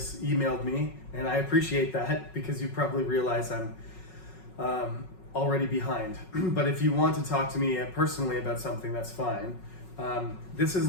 emailed me, and I appreciate that because you probably realize I'm already behind. But if you want to talk to me personally about something, that's fine. This is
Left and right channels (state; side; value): late; right; 5.4 ms